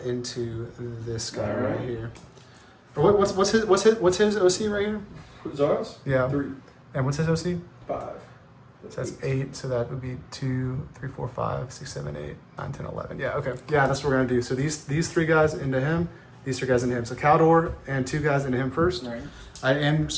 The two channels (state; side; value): identical; both; correlation 1.00